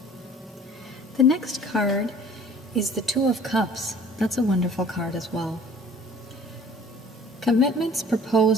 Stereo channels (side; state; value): both; normal; correlation 0.50